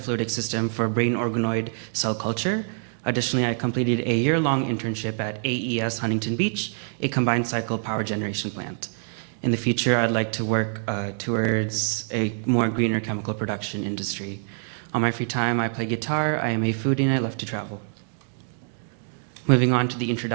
system for brain organoid cell culture. Additionally, I completed a year-long internship at AES Huntington Beach, a combined cycle power generation plant. In the future, I'd like to work towards a more greener chemical production industry. On my free time, I play guitar, I am a foodie, and I love to travel. Moving on to the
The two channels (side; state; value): left; silent; 57 dB below the other